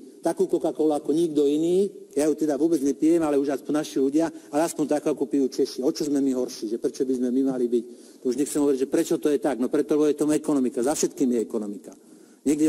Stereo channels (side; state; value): both; identical; correlation 1.00